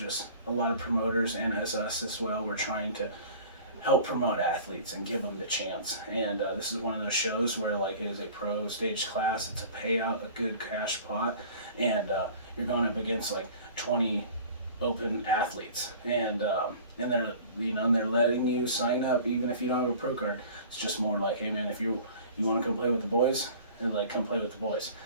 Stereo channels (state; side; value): inverted; both; correlation -0.44